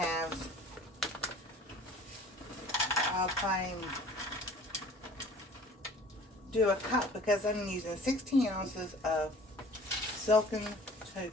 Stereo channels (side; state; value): both; normal; correlation 0.48